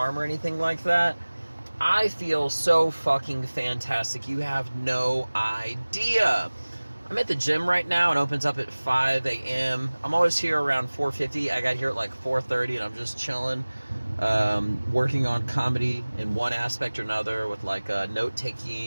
or anything like that. I feel so fucking fantastic. You have no idea. I'm at the gym right now. It opens up at 5 a.m. I'm always here around 4:50. I got here at like 4:30 and I'm just chilling, working on comedy in one aspect or another with like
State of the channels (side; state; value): both; inverted; correlation -1.00